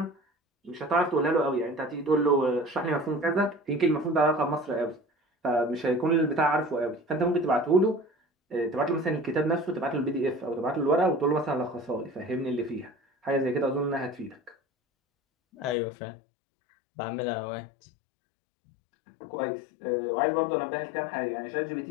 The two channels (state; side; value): drops out; right; at 15.8 s